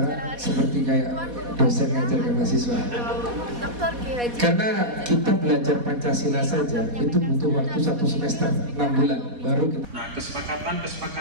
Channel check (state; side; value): late; left; 4.2 ms